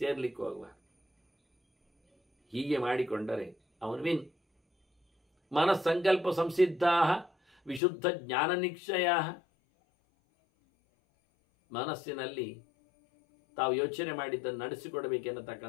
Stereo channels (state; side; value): drops out; right; at 7.8 s